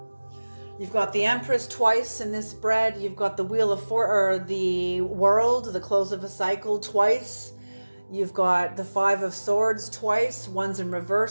You've got the Empress twice in this spread. You've got the Wheel of the World, the close of a cycle twice. You've got the Five of Swords twice. One's in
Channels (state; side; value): inverted; both; correlation -1.00